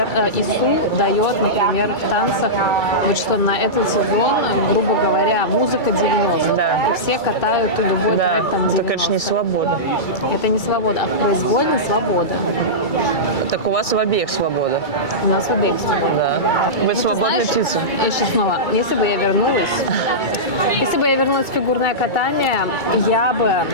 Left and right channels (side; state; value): right; late; 2.3 ms